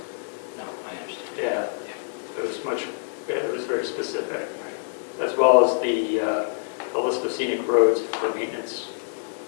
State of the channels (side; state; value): right; silent; digital silence